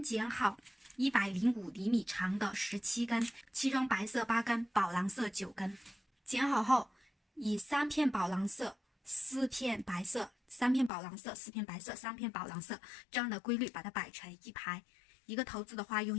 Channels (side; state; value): right; drops out; at 10.9 s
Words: 剪好105厘米长的17根，其中白色8根，宝蓝色9根。剪好后，以3片宝蓝色、4片白色、3片宝蓝色、4片白色、3片宝蓝色这样的规律把它摆成一排。一个头子的话，用